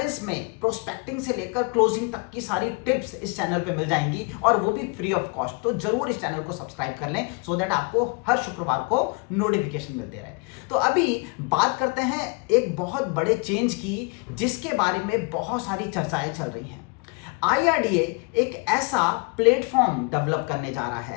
में प्रोस्पेक्टिंग से लेकर क्लोजिंग तक की सारी टिप्स इस चैनल पे मिल जाएंगी और वो भी फ्री ऑफ कॉस्ट। तो जरूर इस चैनल को सब्सक्राइब कर लें सो दैट आपको हर शुक्रवार को नोटिफिकेशन मिलते रहे। तो अभी बात करते हैं एक बहुत बड़े चेंज की जिसके बारे में बहुत सारी चर्चाएं चल रही हैं। IRDA एक ऐसा प्लेटफॉर्म डेवलप करने जा रहा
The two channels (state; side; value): quieter; right; 31.1 dB